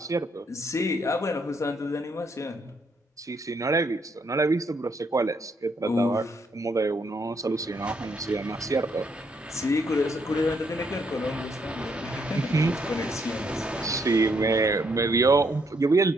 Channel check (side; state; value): both; normal; correlation 0.73